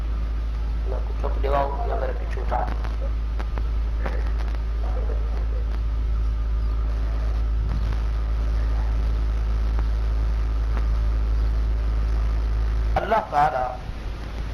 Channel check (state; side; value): identical; both; correlation 1.00